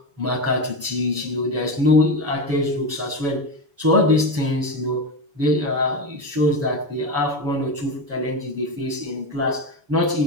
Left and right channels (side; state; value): left; late; 7.0 ms